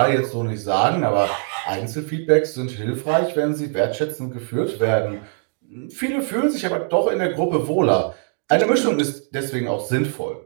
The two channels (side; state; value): left; silent; 57 dB below the other